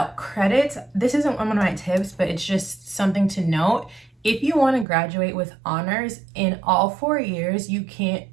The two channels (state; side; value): drops out; left; at 4.9 s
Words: credits, this isn't one of my tips, but it's just something to note. If you want to graduate with honors in all 4 years, you can